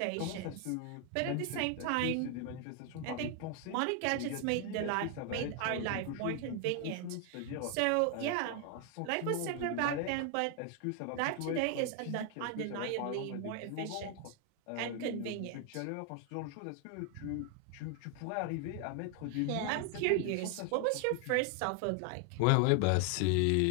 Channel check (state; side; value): different; both; correlation 0.01